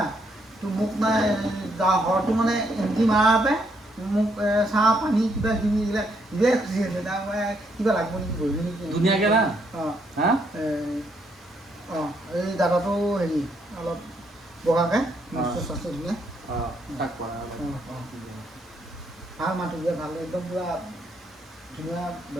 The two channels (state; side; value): normal; both; correlation 0.74